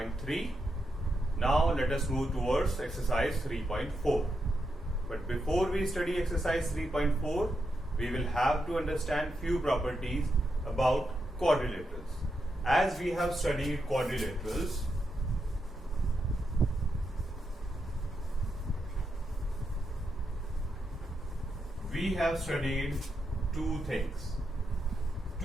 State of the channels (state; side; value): normal; both; correlation 0.84